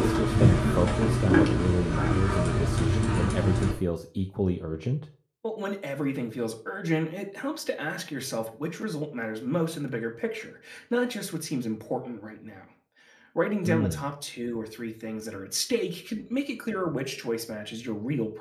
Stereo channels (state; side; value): identical; both; correlation 1.00